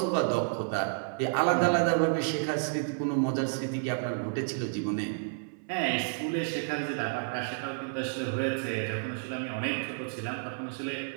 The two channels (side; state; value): left; silent; 57 dB below the other